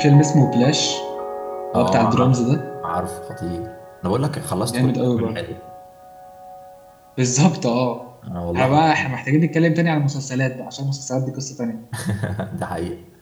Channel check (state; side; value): identical; both; correlation 1.00